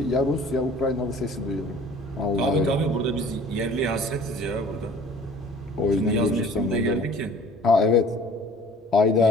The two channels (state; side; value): normal; both; correlation 0.49